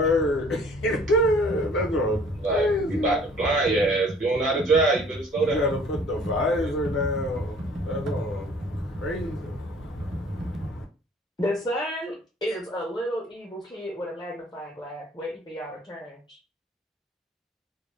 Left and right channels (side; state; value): both; normal; correlation 0.53